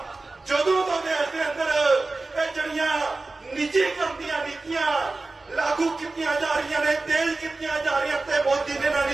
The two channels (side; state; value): left; quieter; 3.4 dB